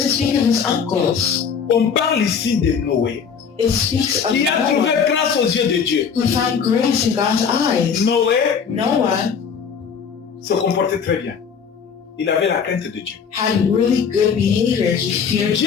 speak of his uncles. On parle ici de Noé, It speaks of qui a trouvé Noah, grâce aux yeux de Dieu. who found grace in God's eyes. Noé Noah se comportait très bien. Il avait la crainte de Dieu. had really good behavior. He feared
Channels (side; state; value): right; quieter; 6.6 dB